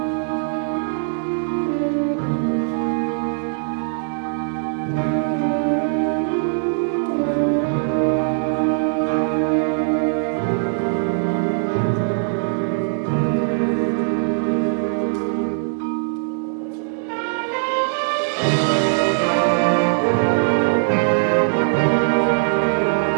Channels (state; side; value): silent; left; 58 dB below the other